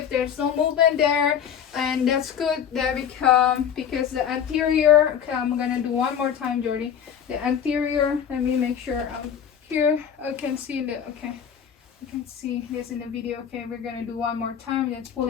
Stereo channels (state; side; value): quieter; right; 8.4 dB